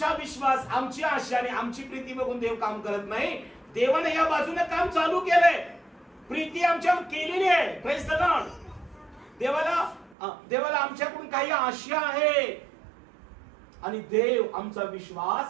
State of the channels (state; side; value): drops out; left; at 10.2 s